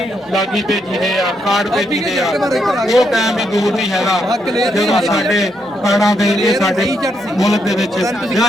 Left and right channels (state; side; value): normal; both; correlation 0.78